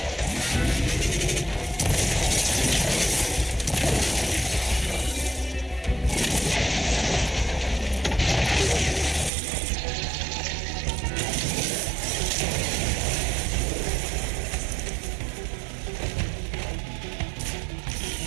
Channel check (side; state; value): left; drops out; at 9.3 s